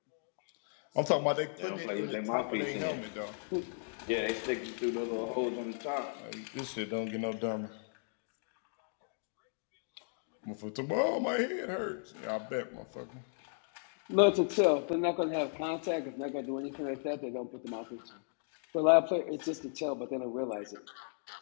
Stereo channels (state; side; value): silent; right; digital silence